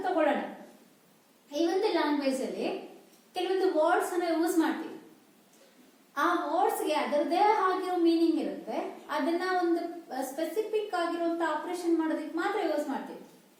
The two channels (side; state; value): both; identical; correlation 1.00